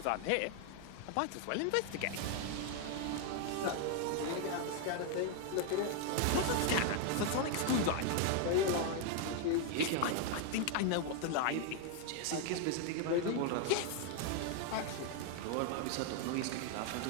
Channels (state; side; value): different; both; correlation 0.00